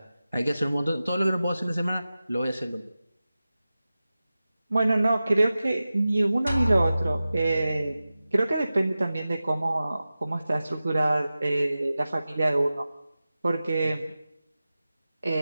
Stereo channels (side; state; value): both; inverted; correlation -0.95